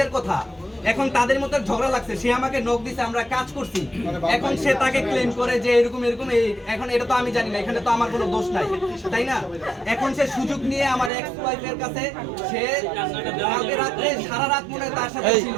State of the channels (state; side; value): drops out; left; at 11.1 s